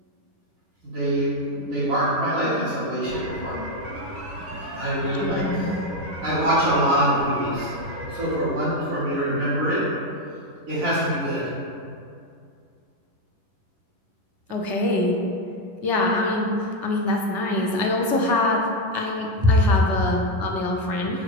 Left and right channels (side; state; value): left; late; 10 ms